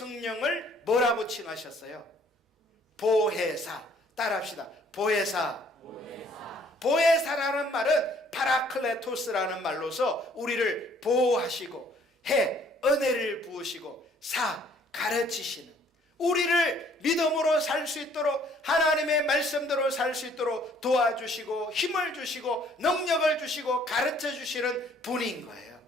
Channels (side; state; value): both; normal; correlation 0.60